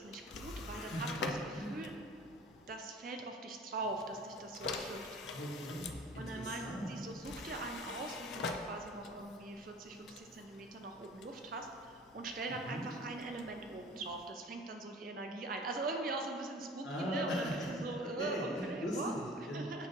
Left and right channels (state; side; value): normal; both; correlation 0.45